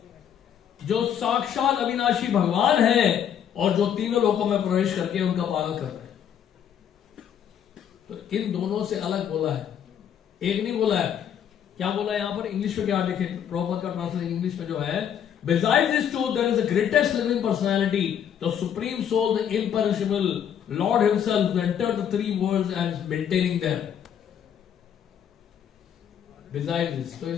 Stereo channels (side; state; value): right; quieter; 9.0 dB